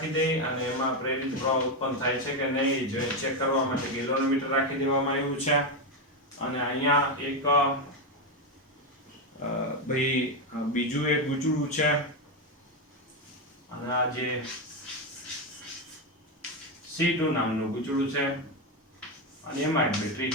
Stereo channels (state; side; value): normal; both; correlation 0.09